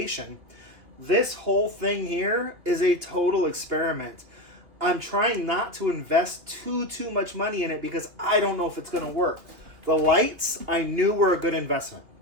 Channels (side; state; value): left; late; 2.8 ms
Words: This whole thing here is a total experiment. I'm trying not to invest too much money in it because I don't know if it's going to work. The lights I knew were a good investment.